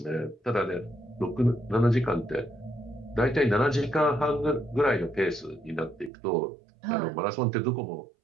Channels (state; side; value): drops out; left; at 6.1 s